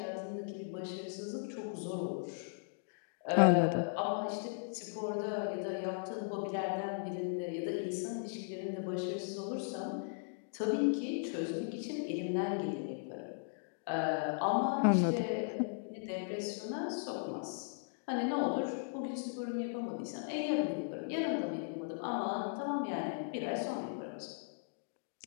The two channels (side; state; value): right; silent; digital silence